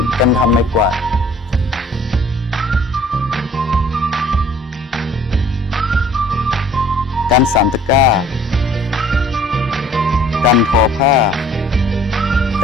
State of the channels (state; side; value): normal; both; correlation 0.54